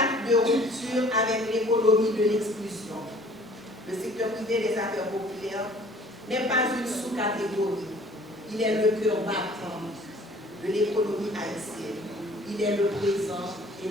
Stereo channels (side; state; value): both; normal; correlation 0.52